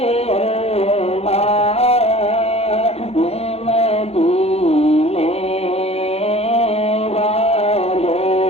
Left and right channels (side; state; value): right; late; 0.30 ms